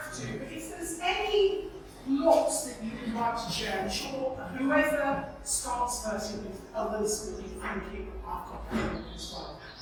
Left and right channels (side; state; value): both; identical; correlation 1.00